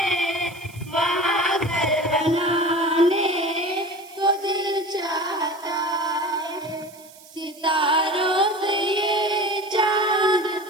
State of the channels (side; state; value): right; noise; hiss, 22 dB below the sound